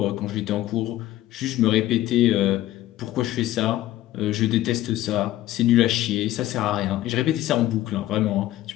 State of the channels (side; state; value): right; quieter; 14.7 dB